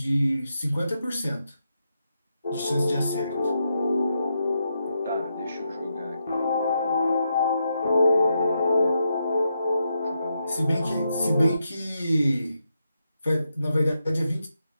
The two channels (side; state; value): both; inverted; correlation -0.83